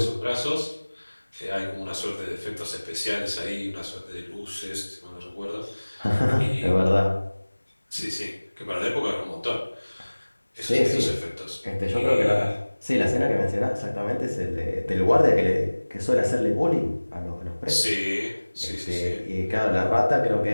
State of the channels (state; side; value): inverted; both; correlation -1.00